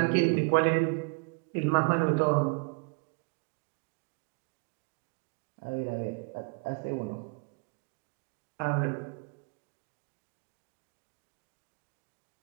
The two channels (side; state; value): left; quieter; 33.8 dB